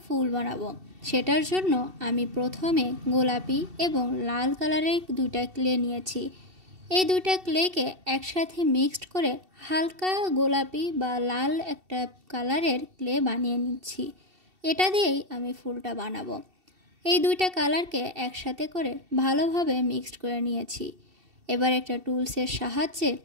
ফুল বানাবো। সেটার জন্য আমি প্রথমে গোলাপি এবং লাল কালারের দুইটা ক্লে নিয়েছি। এই দুইটা ক্লেকে একসাথে মিক্সড করে হালকা গোলাপি বা লাল একটা কালারের ক্লে বানিয়ে নিচ্ছি। এটা দিয়েই আমি ফুলটা বানাবো। এই দুইটা কালারকে একসাথে করে ভালোভাবে মিক্সড করে নিয়েছি। এবার একটা টুলসের সাহায্যে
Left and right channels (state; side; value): late; left; 2.7 ms